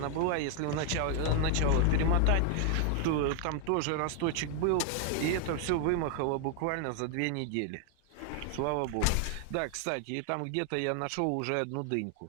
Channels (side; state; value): both; different; correlation 0.00